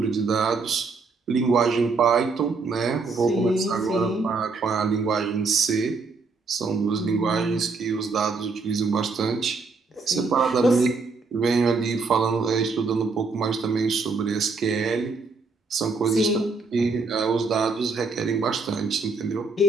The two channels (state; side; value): quieter; left; 4.1 dB